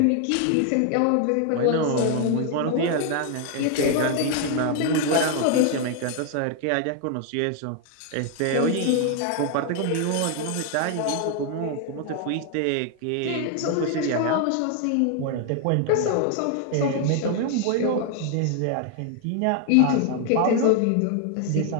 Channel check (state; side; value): different; both; correlation 0.00